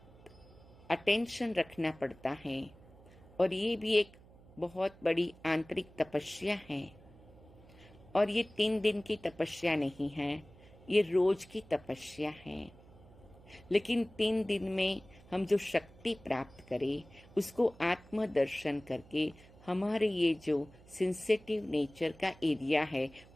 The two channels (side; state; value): right; noise; hum, 23 dB below the sound